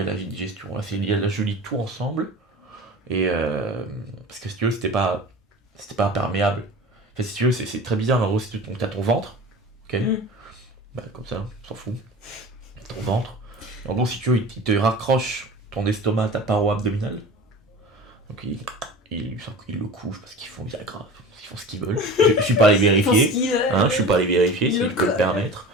à la digestion, là, c'est lié à la, je lis tout ensemble, et parce que si tu veux, c'était pas imperméable. Enfin, si tu veux, c'est très bizarre, mais en gros, si tu as ton ventre, ok, bah, comme ça, on s'en fout, ton ventre, en gros, si tu veux, il te raccroche ton estomac à ta paroi abdominale, donc ils le couchent parce qu'ils font des agrafes, ils font ce qu'ils veulent. Je suis pas allé vérifier, je suis pas allé vérifier s'ils peuvent le permettre.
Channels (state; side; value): normal; both; correlation 0.36